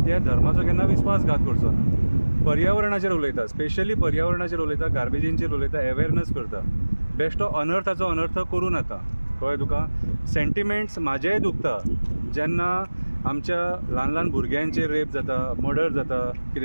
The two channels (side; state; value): both; inverted; correlation -1.00